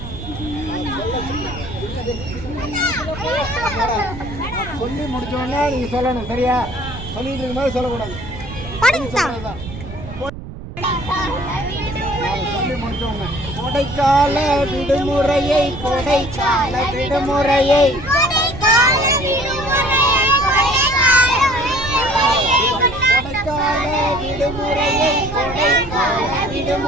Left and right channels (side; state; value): right; noise; rumble, 12 dB below the sound